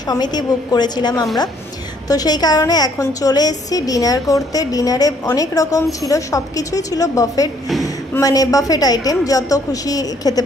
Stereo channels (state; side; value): normal; both; correlation 0.65